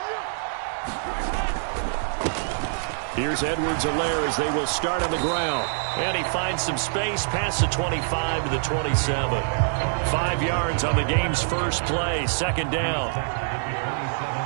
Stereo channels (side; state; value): left; silent; 62 dB below the other